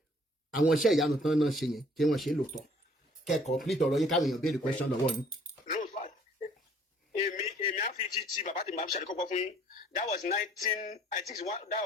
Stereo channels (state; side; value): normal; both; correlation 0.58